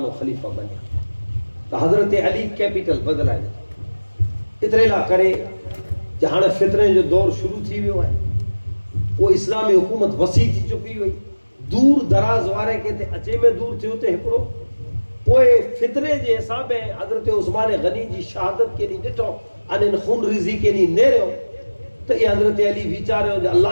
خلیفہ بنیا تو حضرت علی کیپٹل بدلا ہے اترے لا کرے جہاں فطرے جو دور شروع تھی ہوئے ہے وہ اسلامی حکومت وسیع تھی چکی ہوئی دور دراز وارے کہتے اچے میں دور تھی ہوتے ہکڑو پوئے فطرے جے حساب ہے حضرت عثمان غنی جی شہادت کے لیے ڈٹو ان خون ریزی کے لیے نیرے ہو تو یہ حضرت علی بیچارے ہو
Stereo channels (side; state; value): both; inverted; correlation -1.00